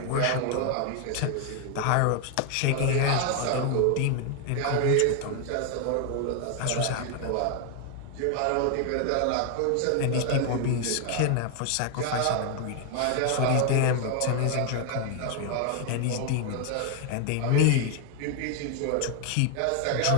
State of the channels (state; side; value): different; both; correlation 0.01